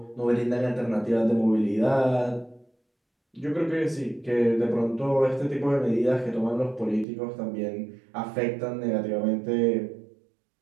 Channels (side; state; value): left; drops out; at 7.1 s